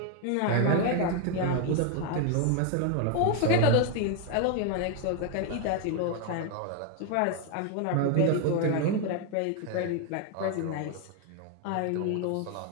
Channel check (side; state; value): both; different; correlation 0.01